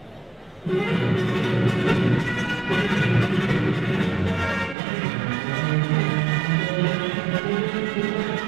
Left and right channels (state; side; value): drops out; left; at 4.8 s